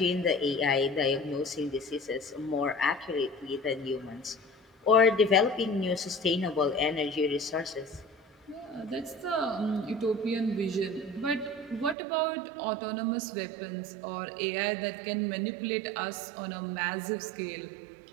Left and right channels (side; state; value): left; drops out; at 12.0 s